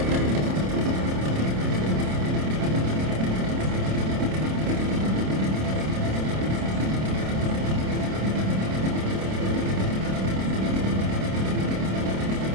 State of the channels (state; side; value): late; left; 27 ms